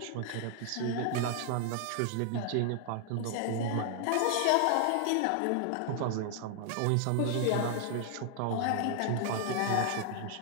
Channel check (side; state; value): both; different; correlation 0.00